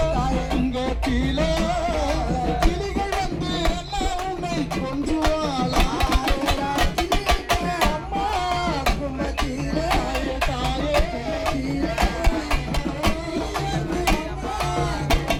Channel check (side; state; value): both; identical; correlation 1.00